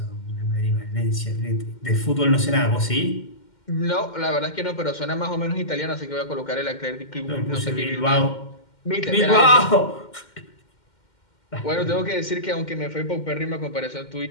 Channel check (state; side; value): late; right; 2.1 ms